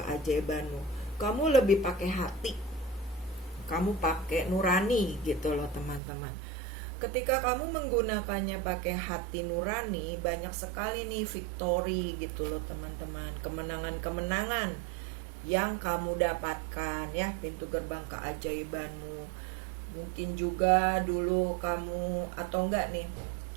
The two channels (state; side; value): drops out; left; at 6.0 s